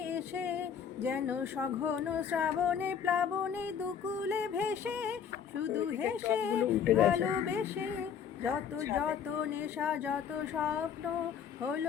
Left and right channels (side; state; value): right; quieter; 7.7 dB